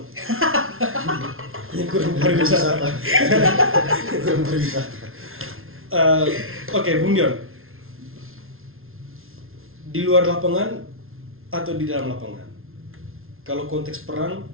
Yang kurang pariwisata. Kurang pariwisata. Oke, Bung Dion. Di luar lapangan atau di dalam lapangan? Kalau konteks perang,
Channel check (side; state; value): left; late; 0.61 ms